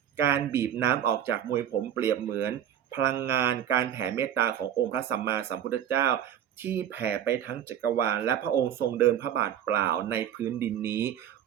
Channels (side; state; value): left; quieter; 10.0 dB